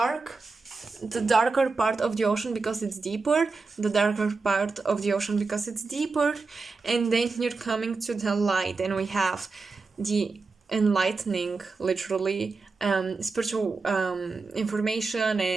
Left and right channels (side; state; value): left; quieter; 4.2 dB